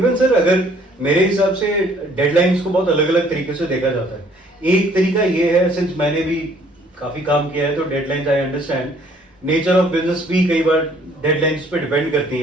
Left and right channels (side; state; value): both; normal; correlation 0.60